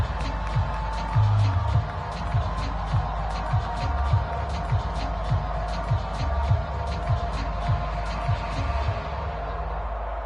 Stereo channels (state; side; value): identical; both; correlation 1.00